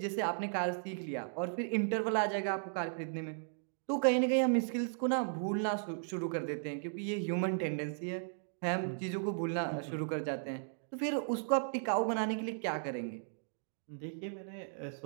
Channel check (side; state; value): left; silent; digital silence